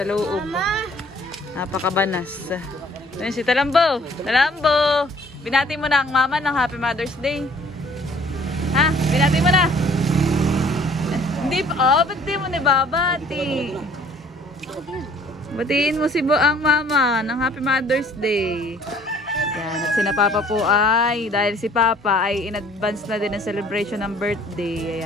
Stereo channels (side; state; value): both; normal; correlation 0.56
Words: loob. Napakabanas. Yan si Talambo. Talambo! Binati mo na ang mama ng Happy Mother's Day. Ha? Binati mo na. Hindi pa. Oh, ba't di mo nababati? Batiin mo si ang mama ng Happy Mother's Day. Yan, at sina Papa po ay, dahil si Papa ay in advance na din ang celebration ng birthday.